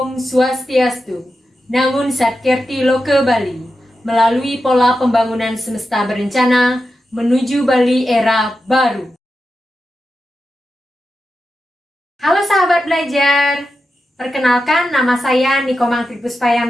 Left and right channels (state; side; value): normal; both; correlation 0.90